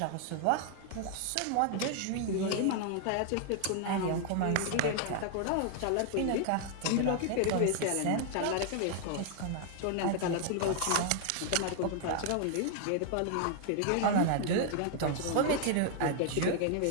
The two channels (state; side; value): different; both; correlation 0.00